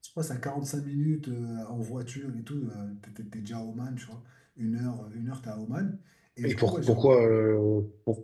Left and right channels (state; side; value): identical; both; correlation 1.00